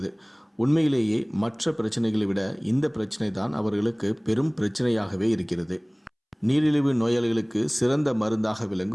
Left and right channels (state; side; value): identical; both; correlation 1.00